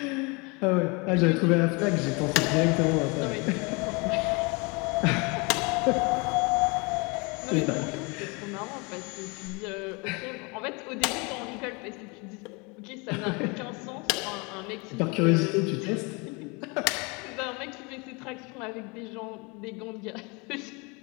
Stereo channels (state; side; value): quieter; right; 29.0 dB